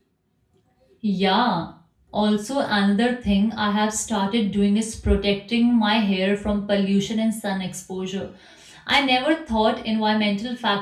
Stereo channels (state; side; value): identical; both; correlation 1.00